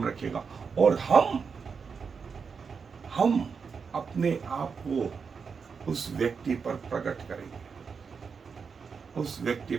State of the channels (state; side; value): quieter; left; 5.7 dB